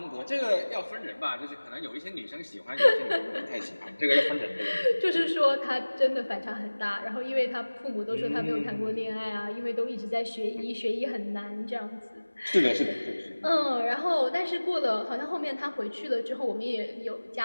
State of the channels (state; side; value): inverted; both; correlation -1.00